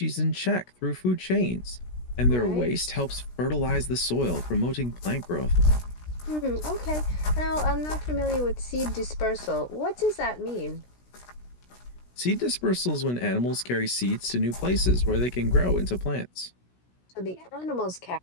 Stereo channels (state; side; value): late; right; 16 ms